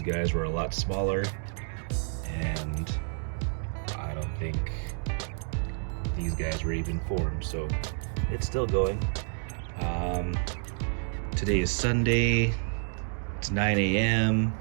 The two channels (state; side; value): silent; left; 58 dB below the other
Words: were a lot smaller, and I don't think these guys were even formed, so it's still going. Today is Sunday. It's 9 a.m.